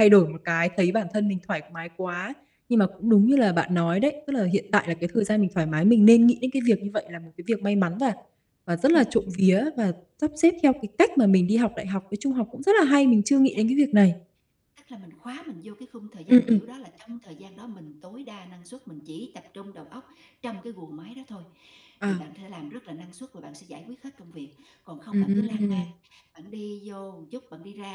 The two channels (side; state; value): both; identical; correlation 1.00